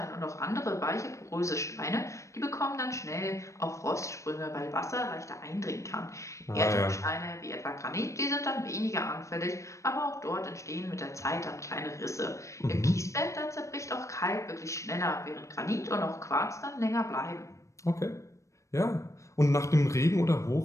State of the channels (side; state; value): right; late; 0.15 ms